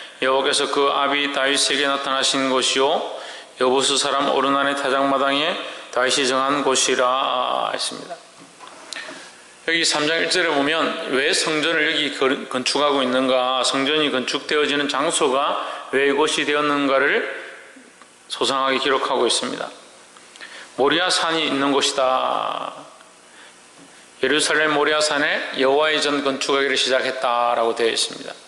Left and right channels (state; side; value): identical; both; correlation 1.00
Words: 여호와께서 그 아비 다윗에게 나타나신 곳이요 여부스 사람 오르난의 타작마당에 다윗이 정한 곳이라 했습니다. 여기 3장 1절에 보면 왜 성전을 여기 건축하고 있는가, 성전이 건축되어지는 장소가 왜 이곳이 되었는가를 소상하게 기록하고 있습니다. 모리아 산이 있는 곳이다. 예루살렘 모리아 산에 여호와의 전 건축하기를 시작했다라고 되어 있습니다.